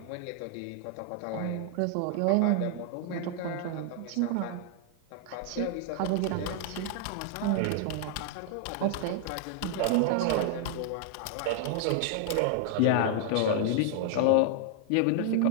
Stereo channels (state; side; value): different; both; correlation 0.00